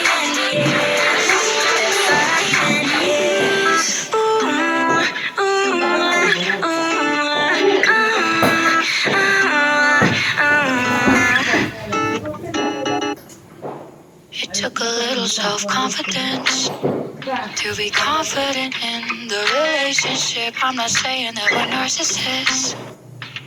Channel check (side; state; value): both; identical; correlation 1.00